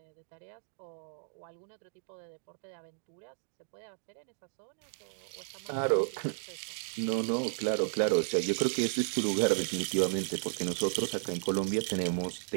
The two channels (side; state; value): left; silent; digital silence